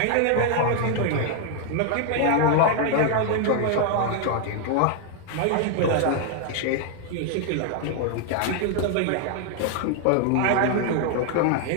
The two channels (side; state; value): both; different; correlation 0.00